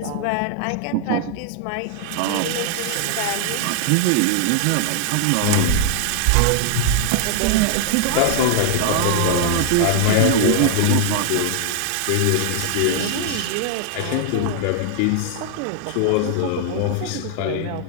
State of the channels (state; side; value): different; both; correlation 0.00